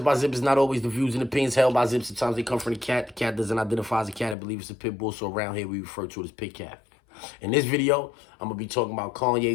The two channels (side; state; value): right; drops out; at 4.4 s